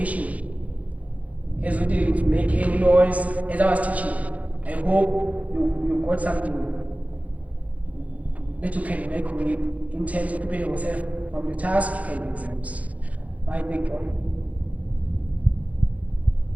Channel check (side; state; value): left; late; 0.069 ms